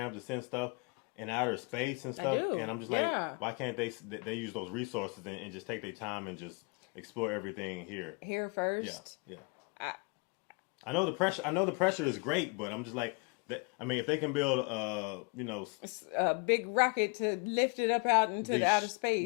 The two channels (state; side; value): quieter; right; 30.2 dB